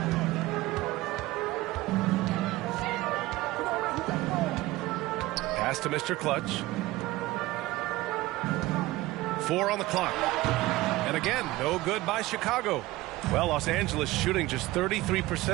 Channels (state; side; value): quieter; left; 18.5 dB